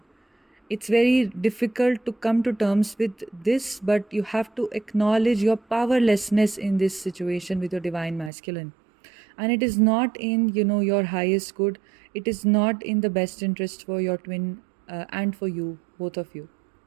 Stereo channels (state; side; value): drops out; left; at 8.3 s